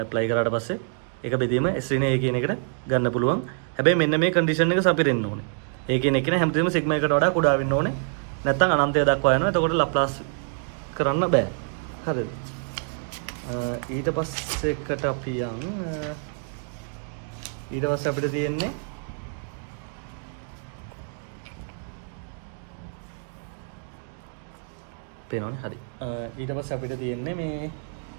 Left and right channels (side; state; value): left; silent; 58 dB below the other